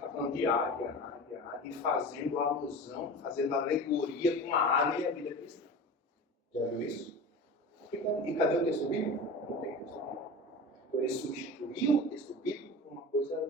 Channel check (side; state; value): both; normal; correlation 0.32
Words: falando de águia, e fazendo alusão, fazendo alegoria com a águia e a vida cristã. Já viu isso? E cadê o texto bíblico? Não tem texto bíblico. Então ele substituiu o texto bíblico por uma coisa da